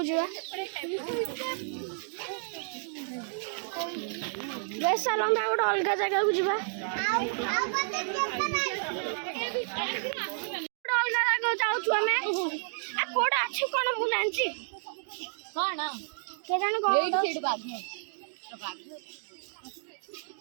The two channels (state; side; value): silent; left; digital silence